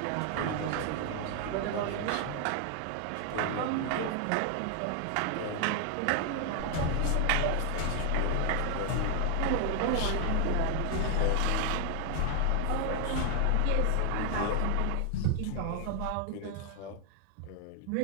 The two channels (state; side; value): different; both; correlation 0.00